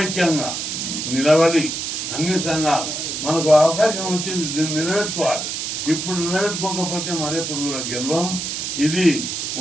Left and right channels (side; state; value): right; noise; hiss, 4 dB below the sound